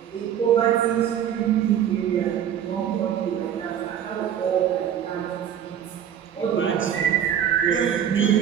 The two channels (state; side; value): quieter; left; 9.5 dB